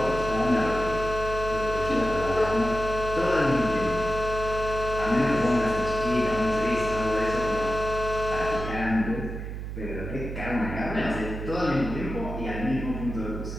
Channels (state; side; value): noise; right; hum, 7 dB below the sound